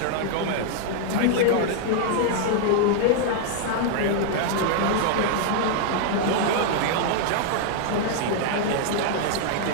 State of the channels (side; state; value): both; different; correlation 0.00